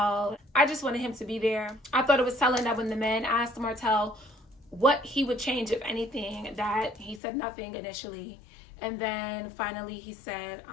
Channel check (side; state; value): right; drops out; at 7.2 s